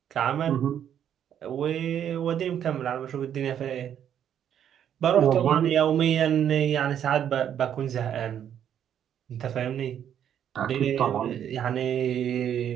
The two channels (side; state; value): left; quieter; 9.5 dB